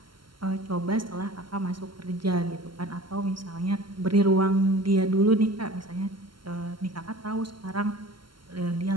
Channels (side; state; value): left; late; 0.72 ms